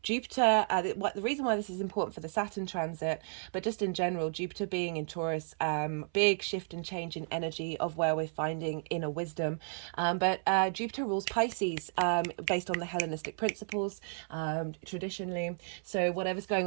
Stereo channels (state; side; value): silent; left; 56 dB below the other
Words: Jupiter, the reason why this is important for the Saturn transit, but just in general, Jupiter being in Taurus, big shift and change in energy of where we're finding inner wisdom. But Jupiter rules Pisces, based on the Hellenistic principles, traditionally. So whatever's